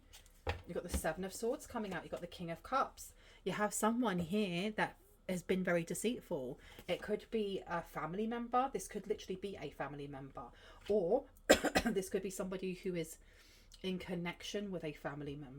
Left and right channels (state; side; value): identical; both; correlation 1.00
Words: You've got the Seven of Swords coming out. You've got the King of Cups. You have someone here that has been very deceitful. It could be a family member. This could literally be a family member, or this could be somebody who is in connection with a family